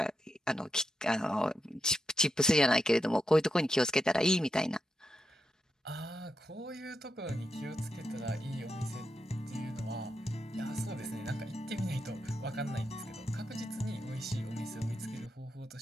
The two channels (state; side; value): normal; both; correlation 0.85